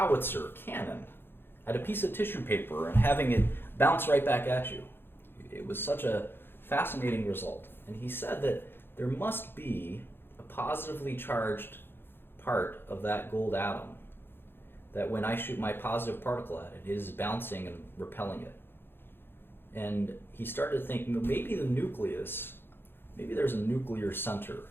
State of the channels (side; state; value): right; late; 0.10 ms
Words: cannon at a piece of tissue paper and having it bounce right back at you. It was such a fascinating result. And he said that there must be a positively charged part of that gold atom that when I shoot my positive particle at it is bouncing and repelling it. And he started to think maybe the nucleus, maybe there's a nuclear center